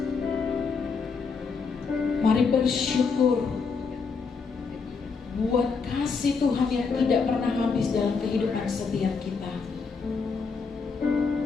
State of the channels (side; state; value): right; quieter; 5.1 dB